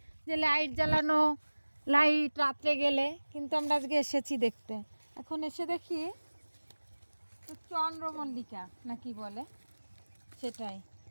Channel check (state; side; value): inverted; both; correlation -1.00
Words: যে লাইট জ্বালানো, লাইট রাত্রে গেলে, কিন্তু আমরা আজকে এসেছি দেখতে। এখন এসে দেখি চন্দ্রমল্লিকা না কি বলে সেটাই।